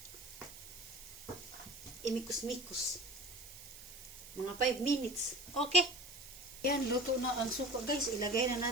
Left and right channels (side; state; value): right; noise; hiss, 15 dB below the sound